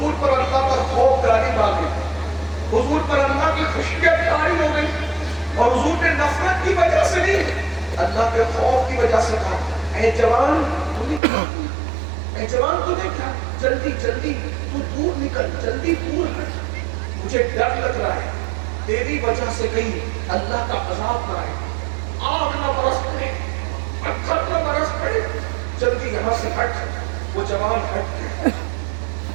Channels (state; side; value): drops out; left; at 11.2 s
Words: پر اللہ کا خوف غالب آ گئی، حضور پر اللہ کی خشیت طاری ہو گئی، اور حضور نے نفرت کی وجہ سے نہیں، اللہ کے خوف کی وجہ سے کہا اے جوان تو نے کیا کیا، اے جوان تو نے کیا، جلدی جلدی تو دور نکل، جلدی دور ہٹ، مجھے ڈر لگ رہا ہے تیری وجہ سے کہیں اللہ کا عذاب نہ آئے، آگ نہ برس پڑے، پتھر نہ برس پڑے، جلدی یہاں سے ہٹ۔ وہ جوان ہٹ گیا،